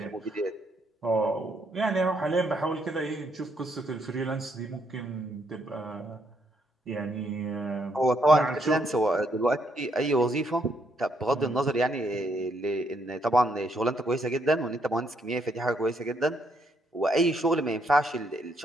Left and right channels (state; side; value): normal; both; correlation 0.73